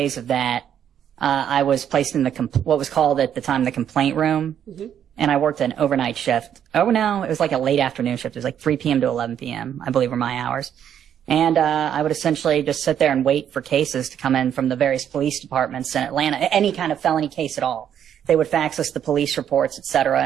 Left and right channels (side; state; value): left; quieter; 9.4 dB